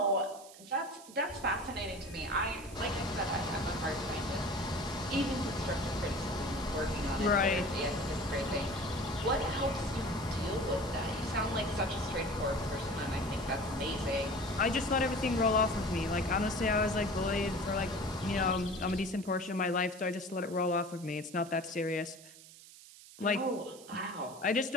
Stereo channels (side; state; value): right; noise; hiss, 19 dB below the sound